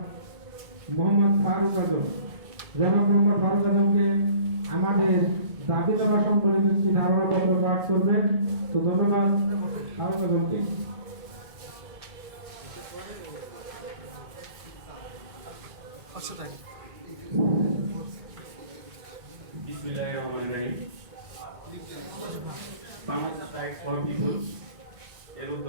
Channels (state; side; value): late; left; 1.7 ms